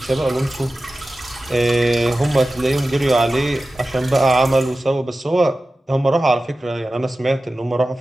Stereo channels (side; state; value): both; normal; correlation 0.95